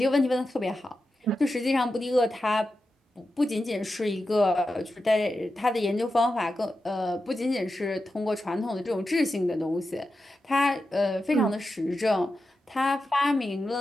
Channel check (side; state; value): both; normal; correlation 0.90